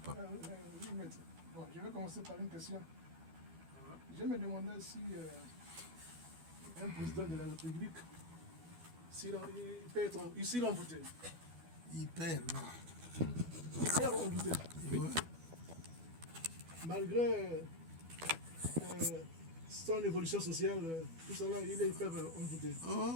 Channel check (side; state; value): left; late; 12 ms